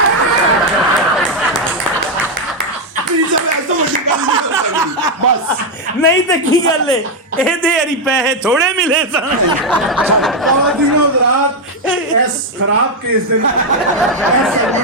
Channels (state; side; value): normal; both; correlation 0.03